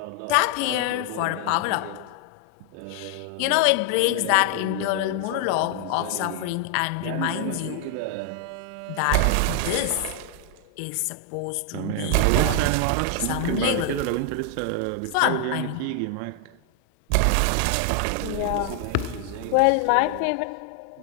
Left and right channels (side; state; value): both; different; correlation 0.00